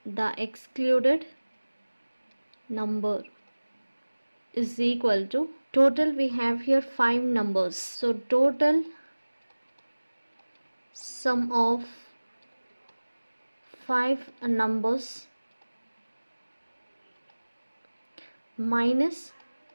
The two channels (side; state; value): both; inverted; correlation -1.00